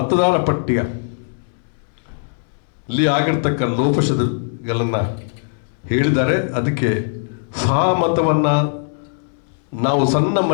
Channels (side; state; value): right; silent; 66 dB below the other